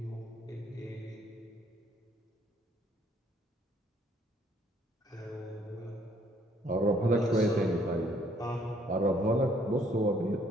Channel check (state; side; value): normal; both; correlation 0.65